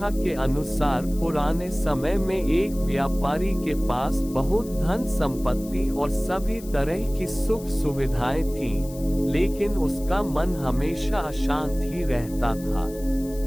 के अनुसार पुराने समय में एक व्यापारी के पास बहुत धन संपत्ति और सभी तरह की सुख सुविधाएं थीं, लेकिन उसका मन हमेशा अशांत ही रहता था।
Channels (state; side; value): noise; left; hiss, 19 dB below the sound